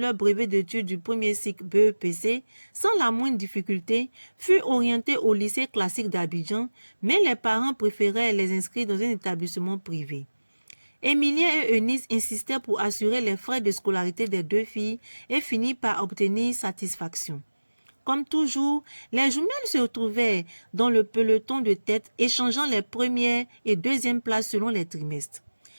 brevet d'études du premier cycle BEPC sans la moindre difficulté furent orientées au lycée classique d'Abidjan, mais les parents préféraient les inscrire dans un établissement privé. Émilien et Eunice insistèrent pour assurer les frais de scolarité des deux filles et finirent par obtenir satisfaction. Comme toujours, les jumelles se retrouvaient dans le peloton de tête, échangeant les premières et deuxièmes places selon les trimestres.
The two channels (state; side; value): inverted; both; correlation -1.00